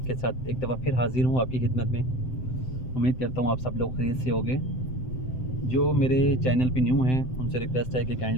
के साथ एक दफ़ा फिर हाज़िर हूँ आपकी खिदमत में। उम्मीद करता हूँ आप सब लोग खैरियत से होंगे। जो मेरे चैनल पे न्यू हैं उनसे रिक्वेस्ट है कि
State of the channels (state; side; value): late; right; 7.8 ms